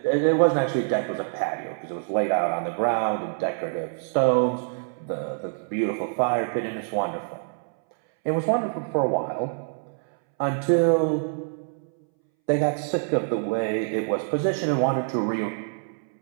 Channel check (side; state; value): left; silent; 61 dB below the other